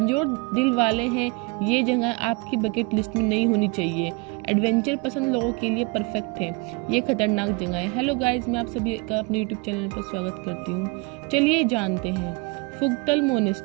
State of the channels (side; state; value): left; quieter; 27.7 dB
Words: दिल वाले हैं, ये जगह आपकी बकेट लिस्ट में नहीं होनी चाहिए। एडवेंचर पसंद लोगों के लिए परफेक्ट है। ये खतरनाक जगह है। हेलो गाइस, मैं आप सभी का अपने यूट्यूब चैनल पर स्वागत करती हूँ। चलिए जानते हैं फुगतल